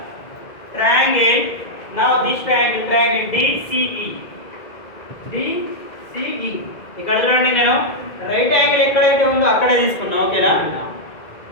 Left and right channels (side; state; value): right; late; 2.2 ms